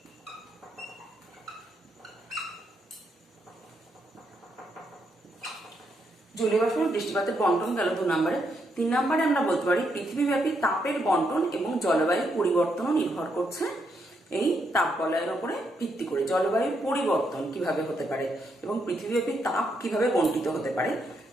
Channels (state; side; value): normal; both; correlation 0.78